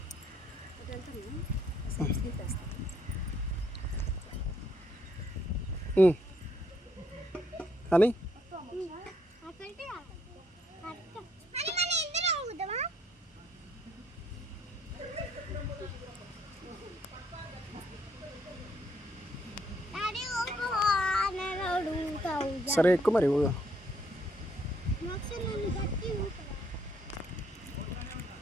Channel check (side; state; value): both; normal; correlation 0.69